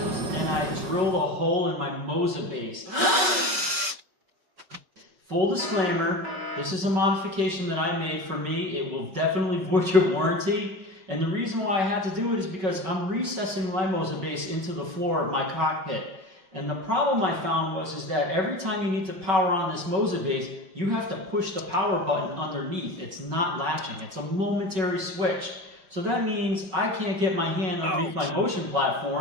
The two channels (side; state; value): left; late; 5.3 ms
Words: and I drilled a hole in my Moza base. Full disclaimer, this is a modification that I made for me. It will definitely void your warranty. And the reason why I had to do it is because I'm recessing my Moza base into the floor of my cockpit. And the problem I found is that every time you need to power on this Moza base, you have to push the power button underneath. It's not latching. It's a momentary switch. So that means I can't get my hand underneath my motion